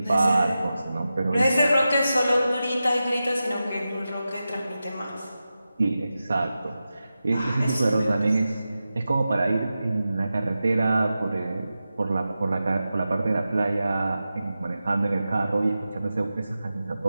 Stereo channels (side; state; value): both; inverted; correlation -0.92